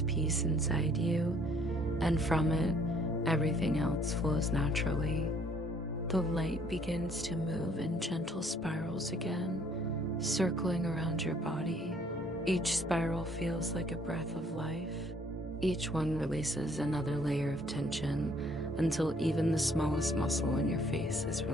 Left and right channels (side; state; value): both; normal; correlation 0.62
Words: peace inside you, and from it, everything else flows naturally. The light begins to move in gentle spirals again, circling around your body. Each spiral feels like a breath of life. Each one releases another layer of tension until even the smallest muscle in your face is